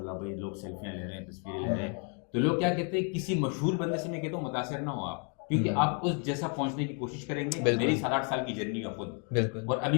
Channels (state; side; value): quieter; right; 39.5 dB